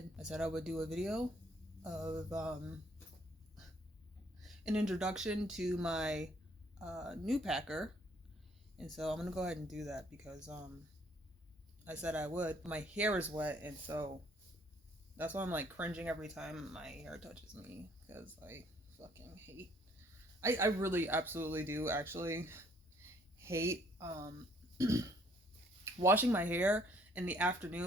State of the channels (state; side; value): normal; both; correlation 0.63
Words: I said I would do a video of an introduction to my new packer, and so I'm gonna go ahead and do that because I said I would. My hair is wet, and so that's why I'm like cringing every time my hair touches me because I fucking hate. I really absolutely do actually hate washing my hair in the